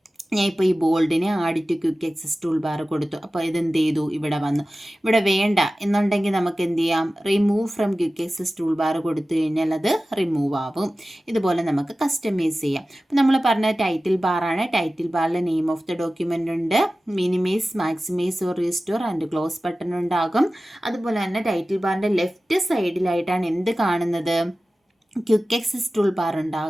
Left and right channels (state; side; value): normal; both; correlation 0.96